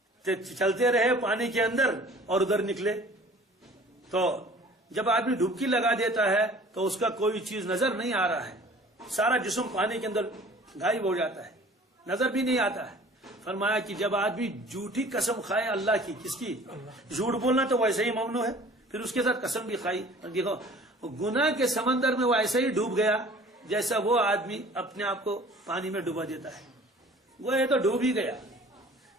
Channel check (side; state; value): both; normal; correlation 0.48